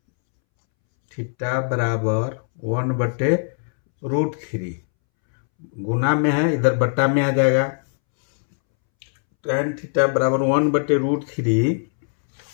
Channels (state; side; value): silent; right; 65 dB below the other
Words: थीटा बराबर 1/√3। गुना में है, इधर बट्टा में आ जाएगा। tan थीटा बराबर 1/√3